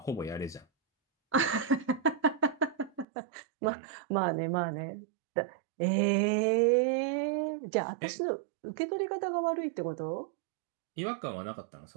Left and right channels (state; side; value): drops out; left; at 3.1 s